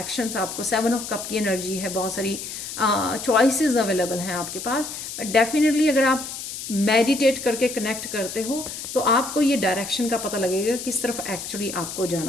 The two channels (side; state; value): left; noise; hiss, 8 dB below the sound